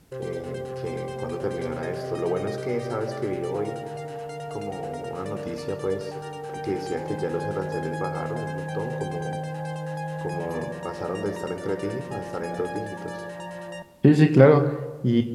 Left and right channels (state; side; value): identical; both; correlation 1.00